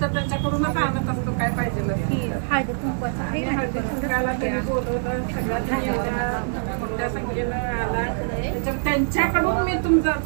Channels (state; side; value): silent; left; 63 dB below the other